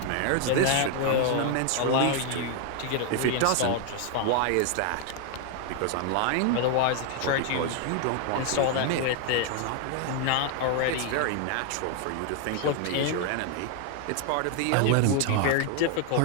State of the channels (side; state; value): both; different; correlation 0.00